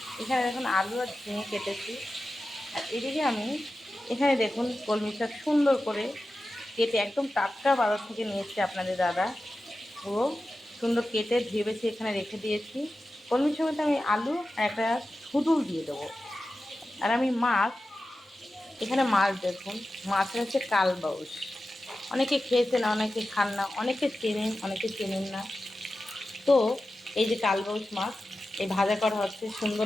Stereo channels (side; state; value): both; normal; correlation 0.93